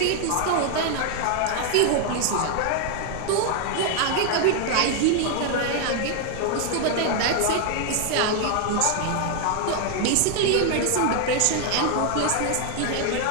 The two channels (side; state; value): both; different; correlation 0.00